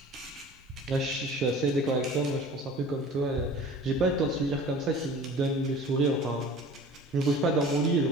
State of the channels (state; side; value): normal; both; correlation 0.43